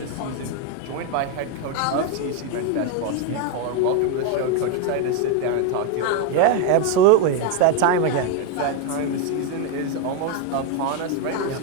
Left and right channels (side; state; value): both; different; correlation 0.01